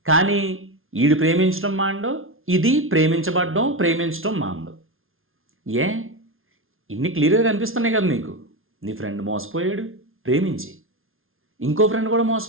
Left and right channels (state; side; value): late; left; 0.61 ms